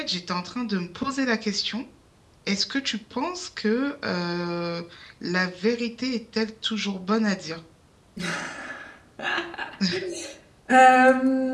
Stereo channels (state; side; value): identical; both; correlation 1.00